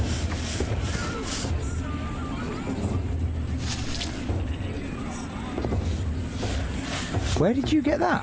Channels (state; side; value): identical; both; correlation 1.00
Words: Where did you get